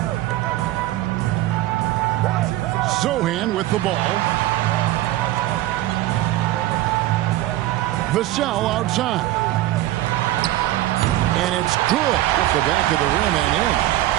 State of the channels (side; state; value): left; quieter; 15.4 dB